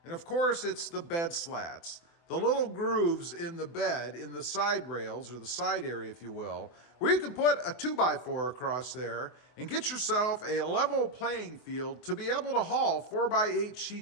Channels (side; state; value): right; late; 24 ms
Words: And of course, it's the bed slats. The little grooves in the bed, in the side rails, or the side area, if you will, where you can put a 2x4 across there and get yourself a level playing field to be able to haul 4x8